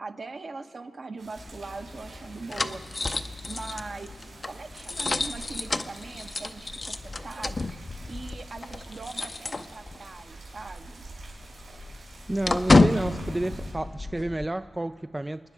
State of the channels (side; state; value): both; normal; correlation 0.96